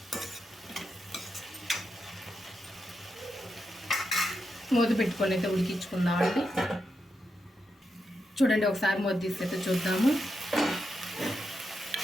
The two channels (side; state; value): both; normal; correlation 0.85